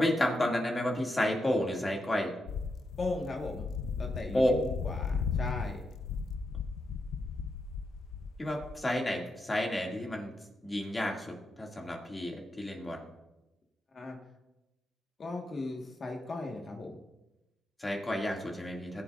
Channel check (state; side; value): normal; both; correlation 0.84